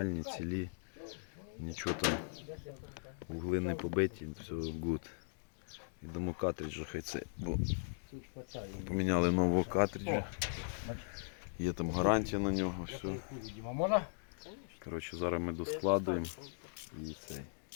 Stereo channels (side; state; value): right; silent; digital silence